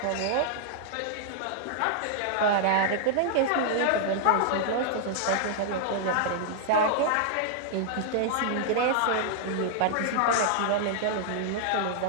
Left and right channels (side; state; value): both; different; correlation 0.00